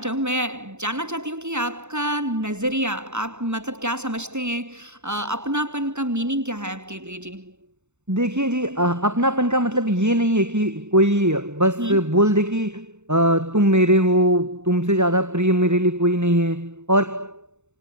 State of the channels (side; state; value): left; late; 0.83 ms